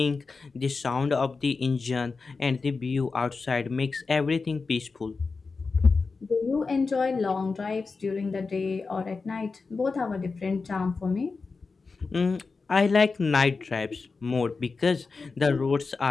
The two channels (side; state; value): right; quieter; 4.4 dB